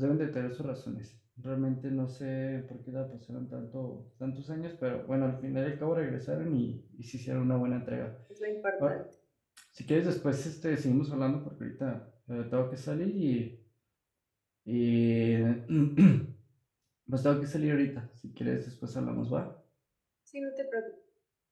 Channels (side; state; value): both; identical; correlation 1.00